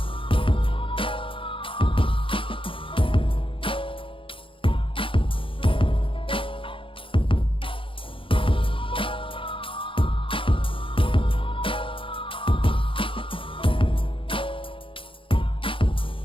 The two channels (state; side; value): late; right; 0.25 ms